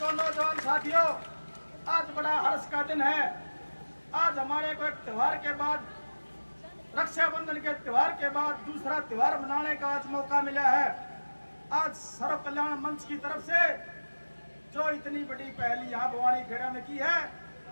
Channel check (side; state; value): both; inverted; correlation -1.00